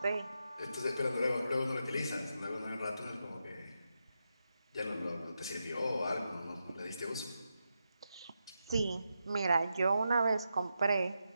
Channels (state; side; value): inverted; both; correlation -0.87